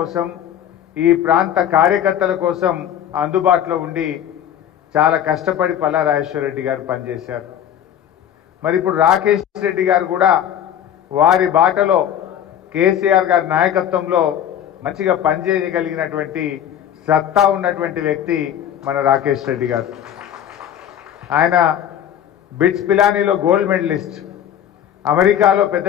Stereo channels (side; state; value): right; quieter; 10.0 dB